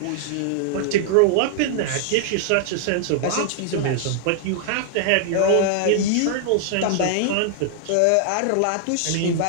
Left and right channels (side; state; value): both; different; correlation 0.00